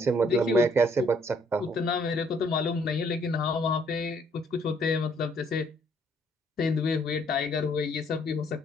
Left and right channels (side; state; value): both; normal; correlation 0.65